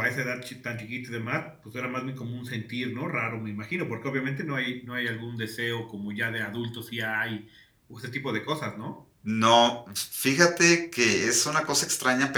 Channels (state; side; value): identical; both; correlation 1.00